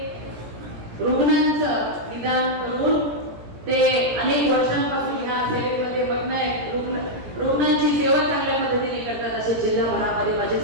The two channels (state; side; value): late; left; 17 ms